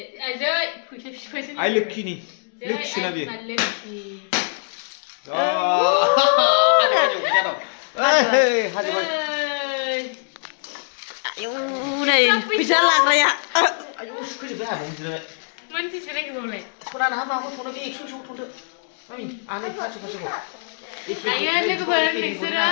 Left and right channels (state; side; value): silent; right; digital silence